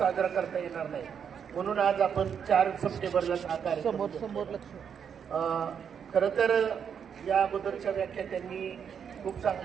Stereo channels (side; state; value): left; quieter; 7.5 dB